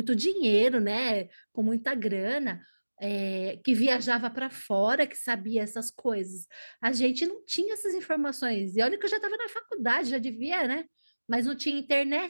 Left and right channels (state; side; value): inverted; both; correlation -1.00